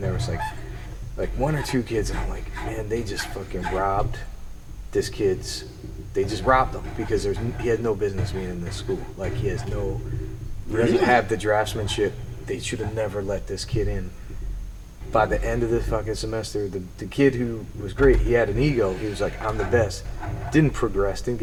there was like one or two kids, and I'm like, man, they just fucking robbed this kid's. They just robbed him because he had no business being in this school. Like he doesn't have the draftsmanship. They should have never let this kid in. By the end of the fucking semester, the kid who was great, he had an ego. He was like, I'm the best. Didn't progress, didn't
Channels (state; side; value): identical; both; correlation 1.00